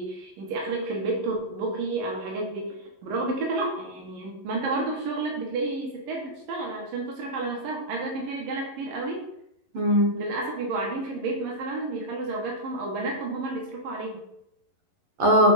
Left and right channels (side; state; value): left; late; 11 ms